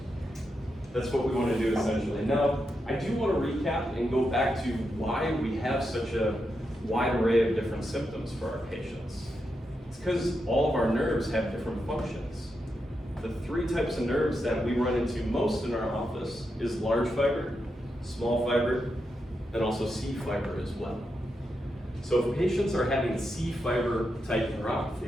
That's what we want to do essentially. Now, I do want to recap and go back to why we have such a wide array of different symptoms for our patients. It's because all of our nerves have different functions. The three types of nerves that we run into most in our office is large fiber, small fiber, and also C fiber as well. So if patients are having C fiber type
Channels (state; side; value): normal; both; correlation 0.85